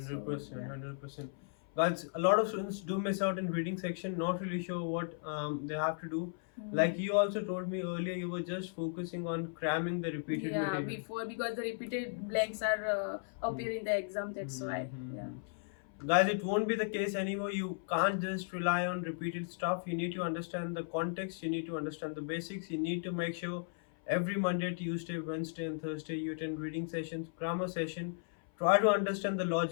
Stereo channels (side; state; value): right; silent; 54 dB below the other